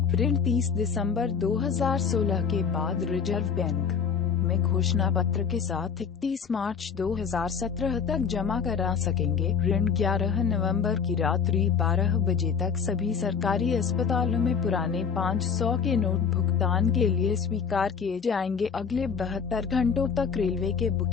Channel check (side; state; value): right; quieter; 6.4 dB